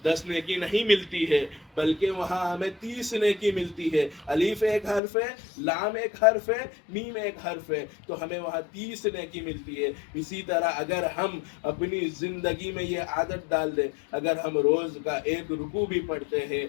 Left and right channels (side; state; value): right; drops out; at 5.0 s